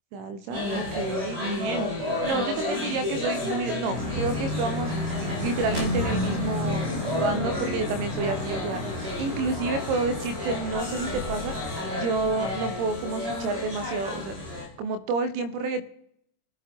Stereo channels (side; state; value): left; late; 26 ms